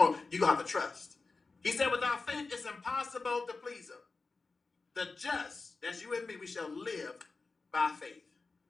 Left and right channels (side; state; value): right; quieter; 4.0 dB